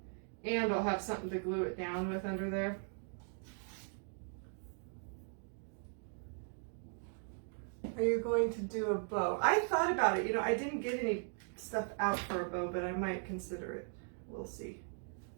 And I'll have something to glue it down with under there. Are you going to do a bow? I thought about it. You know, I didn't get any stuff out for a bow, but I might consider it. We'll see.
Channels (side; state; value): left; silent; 52 dB below the other